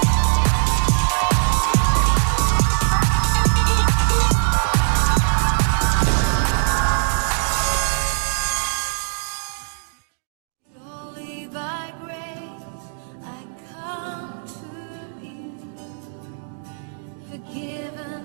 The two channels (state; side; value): silent; left; digital silence